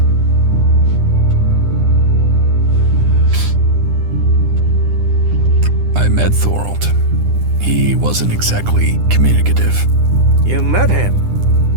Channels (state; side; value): late; left; 9.9 ms